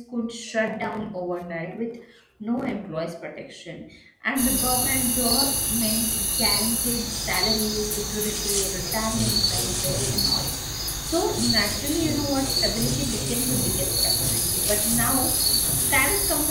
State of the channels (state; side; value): identical; both; correlation 1.00